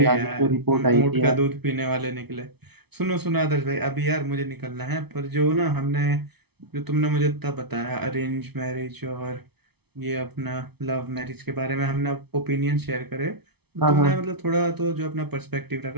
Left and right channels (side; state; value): left; late; 0.98 ms